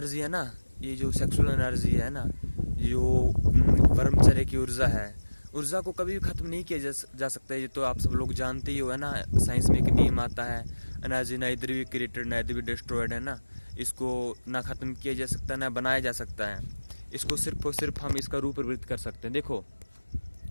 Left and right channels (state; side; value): inverted; both; correlation -1.00